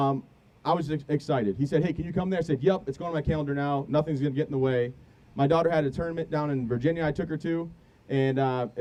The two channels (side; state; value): both; identical; correlation 1.00